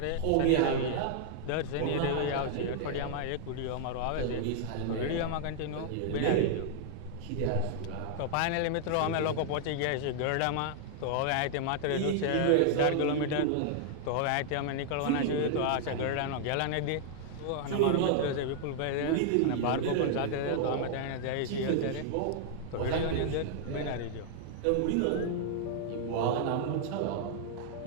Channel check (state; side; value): different; both; correlation -0.01